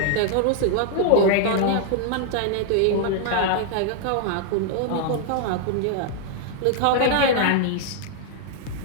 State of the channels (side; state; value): both; different; correlation 0.00